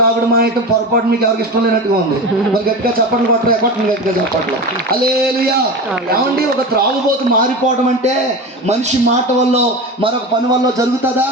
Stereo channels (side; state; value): both; normal; correlation 0.27